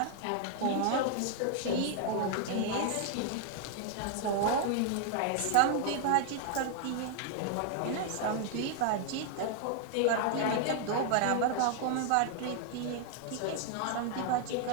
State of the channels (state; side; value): different; both; correlation 0.00